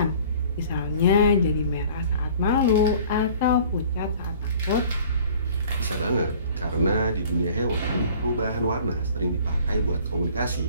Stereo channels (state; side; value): inverted; both; correlation -0.50